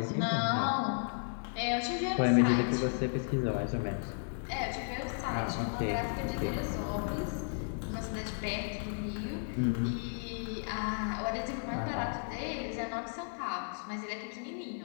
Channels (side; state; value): right; silent; digital silence